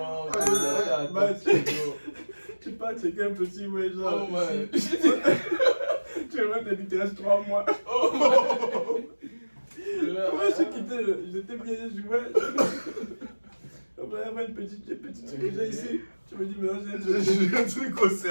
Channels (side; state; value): both; inverted; correlation -1.00